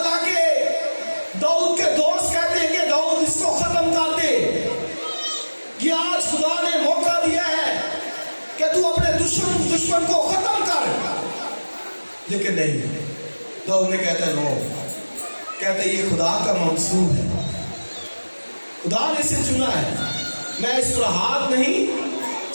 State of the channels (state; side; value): inverted; both; correlation -1.00